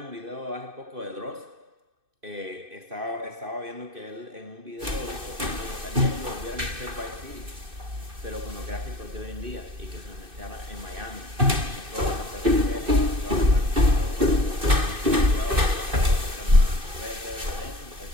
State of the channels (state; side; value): late; left; 2.6 ms